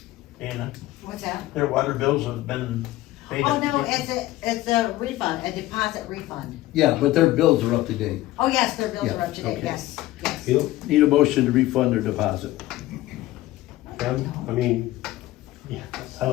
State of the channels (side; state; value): right; quieter; 16.3 dB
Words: Anna, What's that? their water bills have been paid. Oh, no, it's a refund, a deposit refund. Yeah, but their bills are up to date. Oh, yes, their bills are up to date, okay. yes, yes. You Need a motion to refund their deposit. I mean, yeah, I